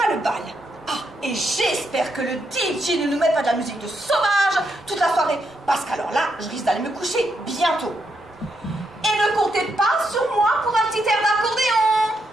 le bal. Ah, et j'espère que le DJ ne nous met pas de la musique de sauvage toute la soirée, parce qu'alors là, je risque d'aller me coucher bientôt. Et ne comptez pas sur moi pour un petit air d'accordéon.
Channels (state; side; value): normal; both; correlation 0.80